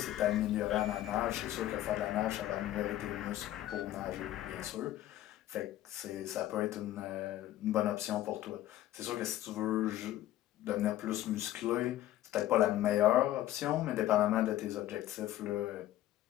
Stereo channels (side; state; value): right; quieter; 13.9 dB